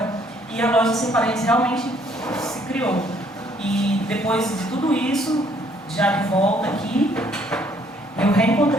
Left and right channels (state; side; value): normal; both; correlation 0.64